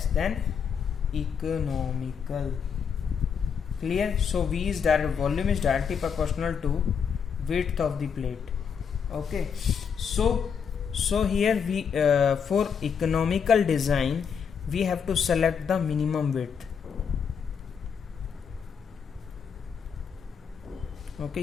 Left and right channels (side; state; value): right; quieter; 6.8 dB